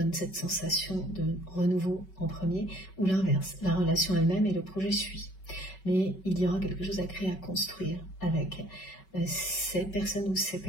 cette sensation de renouveau en premier, ou l'inverse, la relation elle-même et le projet suit. Mais il y aura quelque chose à créer, à construire avec cette personne ou ces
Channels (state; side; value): late; right; 5.3 ms